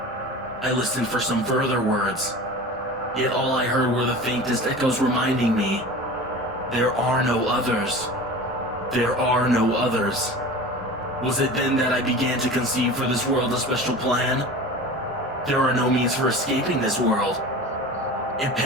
I listened for some further words, yet all I heard were the faintest echoes reminding me, there are no others. There are no others. Was it then that I began to conceive for this world a special plan? There are no means for escaping this world. It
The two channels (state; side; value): normal; both; correlation 0.35